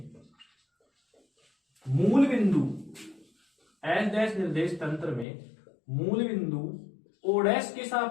मूल बिंदु, एच डैश निर्देश तंत्र में मूल बिंदु ओ डैश के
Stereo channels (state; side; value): drops out; right; at 5.2 s